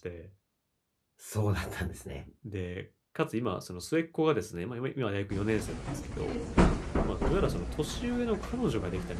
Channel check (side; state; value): both; identical; correlation 1.00